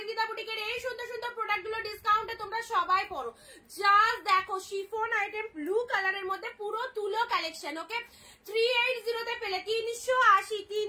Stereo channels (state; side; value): identical; both; correlation 1.00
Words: বুটিকের এই সুন্দর সুন্দর প্রোডাক্ট গুলো ডিসকাউন্টে তোমরা সবাই পড়ো। জাস্ট দেখো শিফন আইটেম ব্লু কালারের মধ্যে পুরো তুলো কালেকশন। ওকে 380 তে পেলে